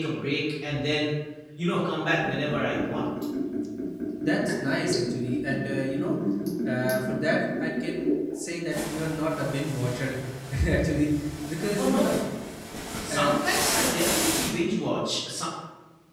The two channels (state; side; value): identical; both; correlation 1.00